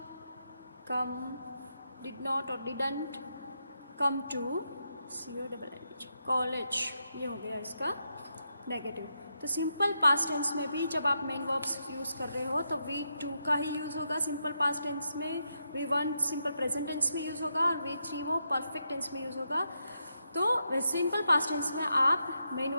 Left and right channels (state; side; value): inverted; both; correlation -0.83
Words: come, did not और didn't come to college, ये हो गया इसका नेगेटिव। तो सिंपल पास्ट टेंस में भी जब आप मेन वर्ब्स यूज़ कर रहे हो तो V2 का ही यूज़ होगा सिंपल पास्ट टेंस में, V1 सिंपल प्रेजेंट टेंस में यूज़ होगा और V3 वो परफेक्ट टेंस में यूज़ होगा। तो सिंपल पास्ट टेंस में आप मेन